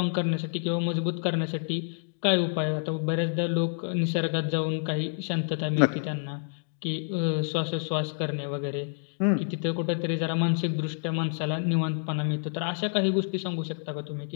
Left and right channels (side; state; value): right; silent; digital silence